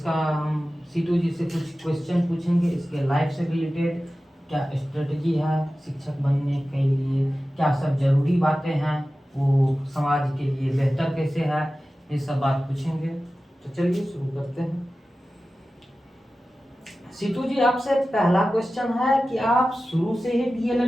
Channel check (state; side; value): normal; both; correlation 0.95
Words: हम सीटू जी से कुछ क्वेश्चन पूछेंगे इसके लाइफ से रिलेटेड। क्या स्ट्रेटजी है शिक्षक बनने के लिए, क्या सब जरूरी बातें हैं, वो समाज के लिए बेहतर कैसे है, ये सब बात पूछेंगे। तो चलिए शुरू करते हैं। सीटू जी, आपसे पहला क्वेश्चन है कि आप शुरू से ही